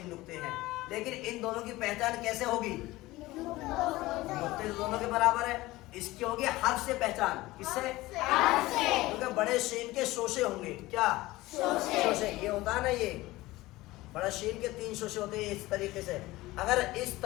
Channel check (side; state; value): right; quieter; 18.7 dB